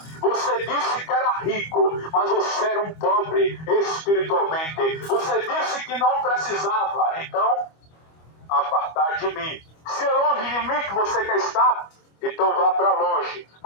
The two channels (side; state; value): right; late; 25 ms